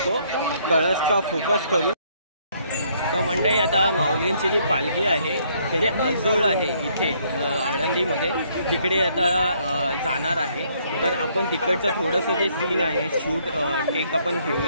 कळसचा फोकस करून. तर मंडळी आता माऊलींची जी पालखी आहे त्याचे अजोळ आहे इथे आळंदीमध्ये, तिकडे आता जाणार आहे. तर आपण तिकडचं थोडंसं जे सीन आहे शूट टेक आपण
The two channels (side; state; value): both; inverted; correlation -0.68